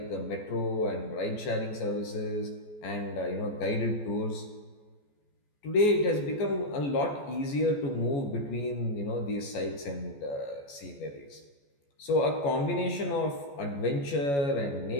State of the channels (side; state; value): right; late; 14 ms